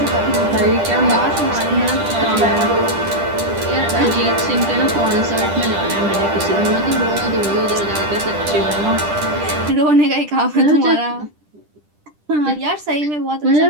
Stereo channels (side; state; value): left; late; 10 ms